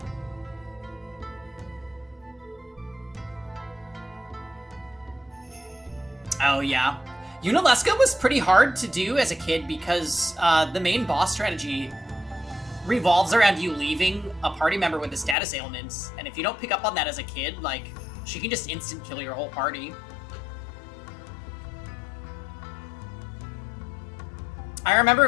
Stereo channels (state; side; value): drops out; right; at 15.4 s